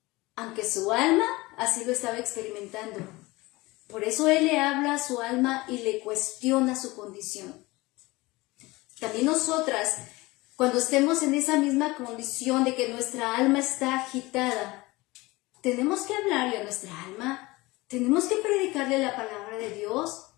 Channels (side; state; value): right; quieter; 21.6 dB